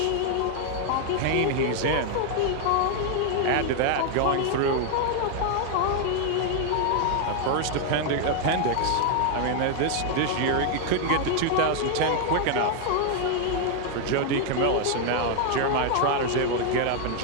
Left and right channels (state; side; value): different; both; correlation 0.00